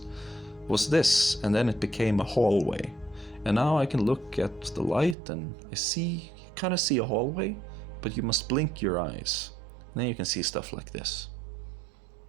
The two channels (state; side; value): drops out; left; at 5.2 s